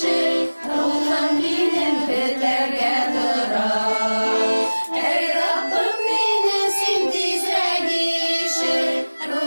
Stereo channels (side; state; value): both; inverted; correlation -1.00